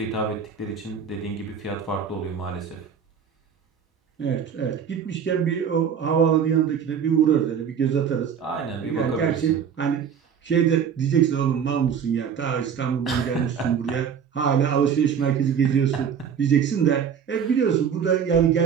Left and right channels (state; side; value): quieter; left; 7.5 dB